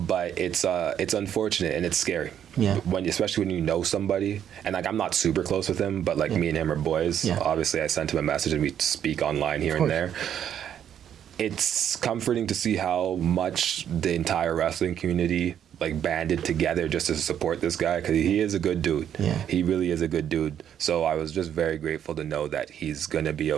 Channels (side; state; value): left; quieter; 9.5 dB